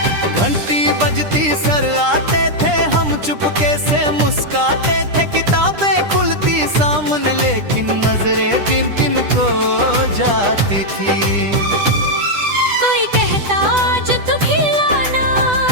घंटी बजती सर आते थे, हम चुपके से मुस्काते थे, किताबें खुलती सामने लेकिन नजरें किन किन को जाती थी। कोई कहता आज तू खिलाना,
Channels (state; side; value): late; left; 10 ms